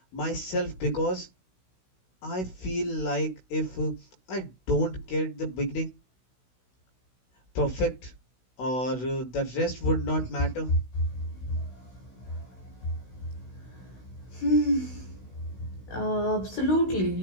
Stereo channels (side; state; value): right; late; 16 ms